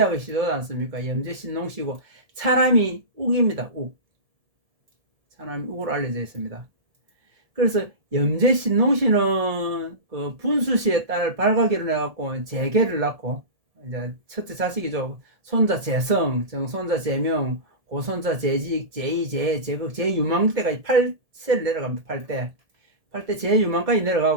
시도지 않습니까? 염제 신농씨고 차남이 욱입니다. 욱. 차남이 욱으로 알려져 있습니다. 그래서 염제 신농씨는 그 분수씨의 딸 발가기를 해갖고 재계를 낳고 이제 첫째 자식이죠. 손자 재성, 정손자 재명, 고손자 재직, 제2, 제, 제극, 제유망 때까지 8세를 내려갑니다. 8대 제유망까지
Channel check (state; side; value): late; left; 1.7 ms